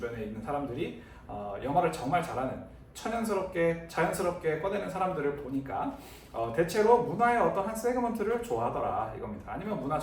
있는 사람들이 영어를 정말 잘하는, 천연스럽게 자연스럽게 꺼내는 사람들을 보니까 대체로 문화의 어떤 한 세그먼트를 좋아하더라 이겁니다. 아니면 문화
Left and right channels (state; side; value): identical; both; correlation 1.00